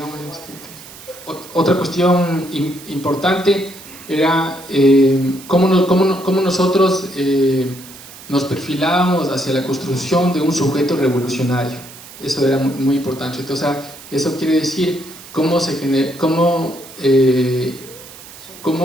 Otra cuestión importante era cómo nosotros nos perfilábamos hacia la construcción de un sujeto revolucionario. Eso era muy importante. Entonces, eso quiere decir cómo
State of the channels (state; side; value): noise; right; hiss, 18 dB below the sound